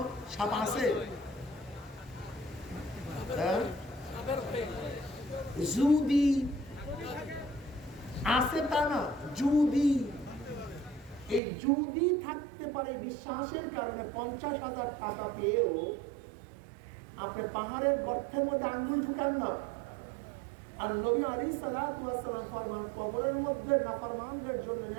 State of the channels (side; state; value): left; drops out; at 11.4 s